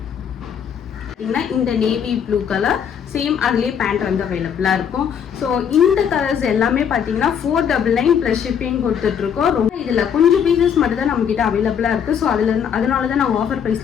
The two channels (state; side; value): quieter; right; 7.9 dB